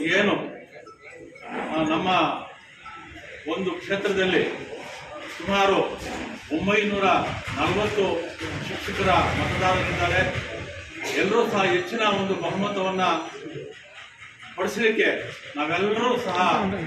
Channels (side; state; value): both; identical; correlation 1.00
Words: ಏನು ನಮ್ಮ ಒಂದು ಕ್ಷೇತ್ರದಲ್ಲಿ ಸುಮಾರು 940 ಶಿಕ್ಷಕರ ಮತದಾರರಿದ್ದಾರೆ. ಎಲ್ಲರೂ ಸಹ ಹೆಚ್ಚಿನ ಒಂದು ಬಹುಮತವನ್ನು ಪಡಿಸಲಿಕ್ಕೆ ನಾವೆಲ್ಲರೂ ಸಹ